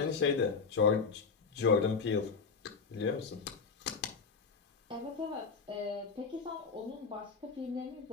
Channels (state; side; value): quieter; right; 5.2 dB